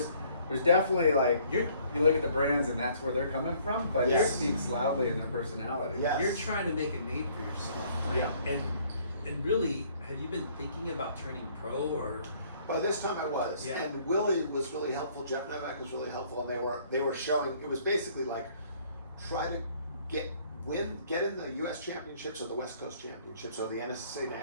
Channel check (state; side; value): inverted; both; correlation -0.60